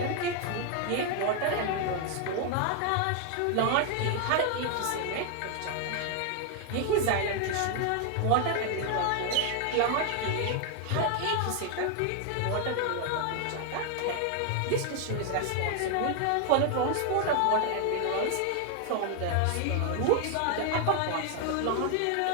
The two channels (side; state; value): both; different; correlation 0.00